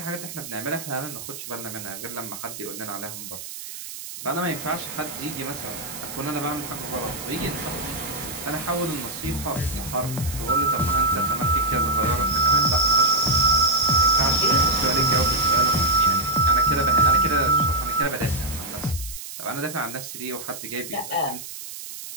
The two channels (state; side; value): noise; right; hiss, 11 dB below the sound